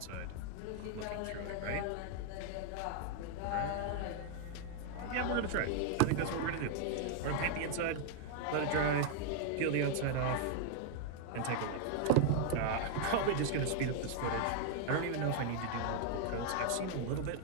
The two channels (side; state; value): both; different; correlation 0.00